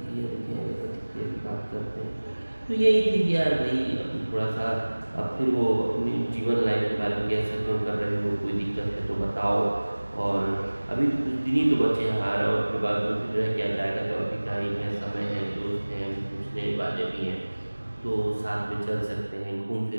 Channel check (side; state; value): both; inverted; correlation -1.00